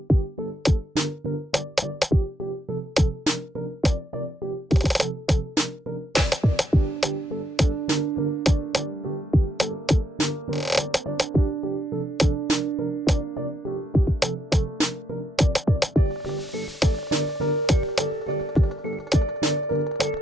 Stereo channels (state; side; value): normal; both; correlation 0.76